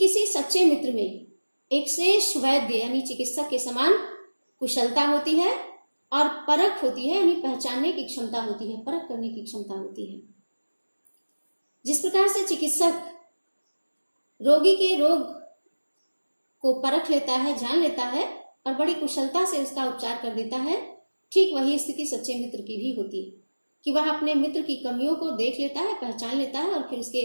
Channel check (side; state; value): both; inverted; correlation -1.00